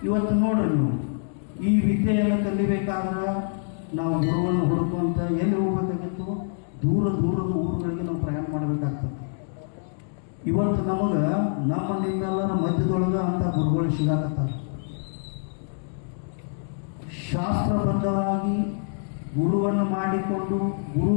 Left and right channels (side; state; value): right; silent; digital silence